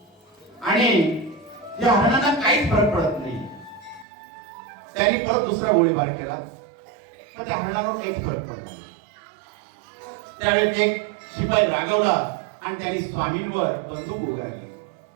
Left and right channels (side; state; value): left; drops out; at 4.0 s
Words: आणि या हरणांना काहीच फरक पडत नाही. त्यांनी परत दुसरा गोळीबार केला पण त्या हरणावर काहीच फरक पडला नाही. त्यावेळेस एक शिपाई रागवला आणि त्यांनी स्वामींवर बंदूक उगारली.